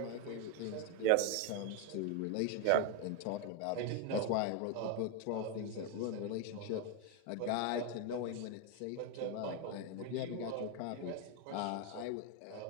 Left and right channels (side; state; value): both; different; correlation 0.01